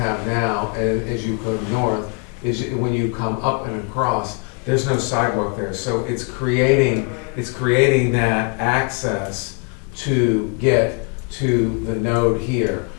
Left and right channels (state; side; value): quieter; right; 34.2 dB